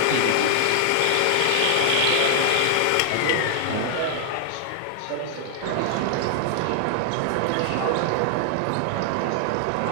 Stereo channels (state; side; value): different; both; correlation 0.00